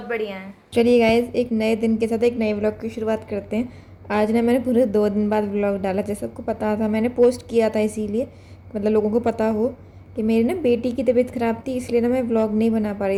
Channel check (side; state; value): both; identical; correlation 1.00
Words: बढ़िया हैं। चलिए गाइज, एक नए दिन के साथ एक नए व्लॉग की शुरुआत करते हैं। आज ना मैंने पूरे 2 दिन बाद व्लॉग डाला। जैसे सबको पता था, मैंने पोस्ट किया था इसीलिए मतलब लोगों को पता हो कि मेरी ना बेटी की तबीयत ख़राब थी, इसलिए ना मैं व्लॉग नहीं बना पा